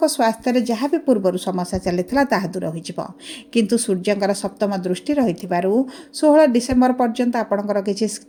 ସ୍ୱାସ୍ଥ୍ୟରେ ଯାହା ବି ପୂର୍ବରୁ ସମସ୍ୟା ଚାଲିଥିଲା ତାହା ଦୂର ହୋଇଯିବ। କିନ୍ତୁ ସୂର୍ଯ୍ୟଙ୍କର ସପ୍ତମ ଦୃଷ୍ଟି ରହିଥିବାରୁ 16 ଡିସେମ୍ବର ପର୍ଯ୍ୟନ୍ତ ଆପଣଙ୍କର କିଛି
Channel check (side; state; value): both; identical; correlation 1.00